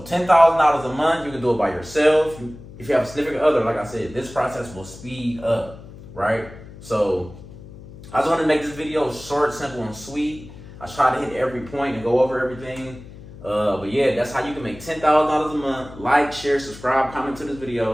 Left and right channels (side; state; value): left; noise; hum, 17 dB below the sound